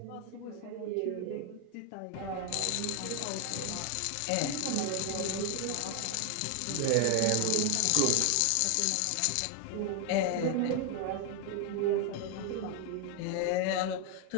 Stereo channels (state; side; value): different; both; correlation 0.01